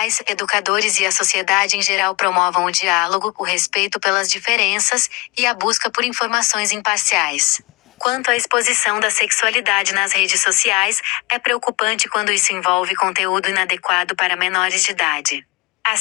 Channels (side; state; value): right; quieter; 23.7 dB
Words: educadores e a sociedade em geral promovam o diálogo, o respeito pelas diferenças e a busca por informações imparciais. Quanto à exposição da sexualidade nas redes sociais, é preocupante quando isso envolve conteúdo inadequado para menores de idade. A